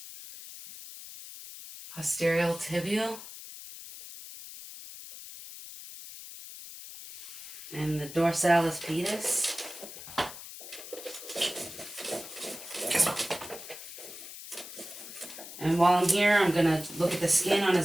Posterior tibial. And the dorsalis pedis. And while I'm here, I'm going to look at the skin on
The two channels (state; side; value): noise; left; hiss, 13 dB below the sound